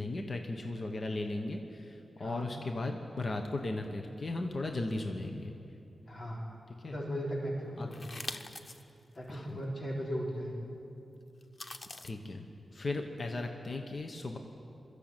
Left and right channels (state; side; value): normal; both; correlation 0.91